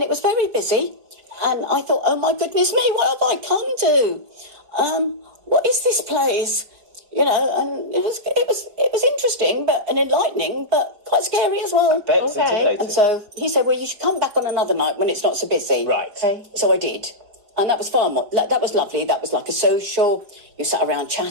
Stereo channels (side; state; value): left; late; 4.8 ms